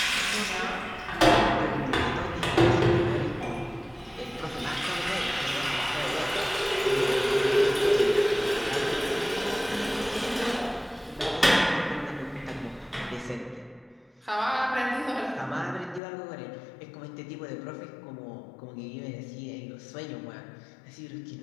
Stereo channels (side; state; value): right; drops out; at 16.0 s